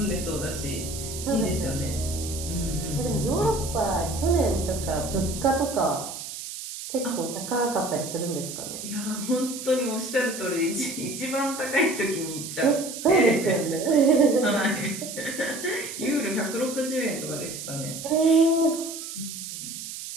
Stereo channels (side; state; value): right; noise; hiss, 9 dB below the sound